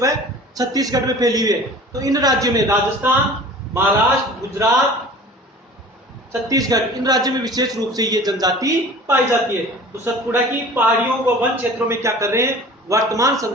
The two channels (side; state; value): both; normal; correlation 0.43